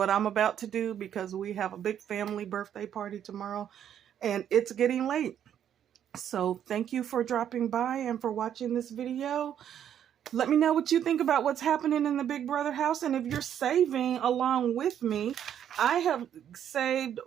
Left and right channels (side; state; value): left; quieter; 9.7 dB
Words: I'm about to do, because we have a big family birthday party tomorrow and it's getting late. So thank you for dropping by and for watching this video. Let me know what you think about what's happening in the Big Brother house. And if you're saving along with me, I have saved